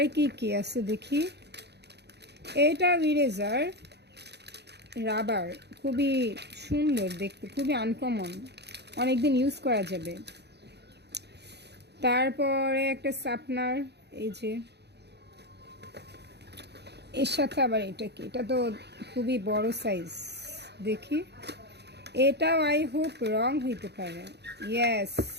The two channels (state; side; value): late; left; 0.49 ms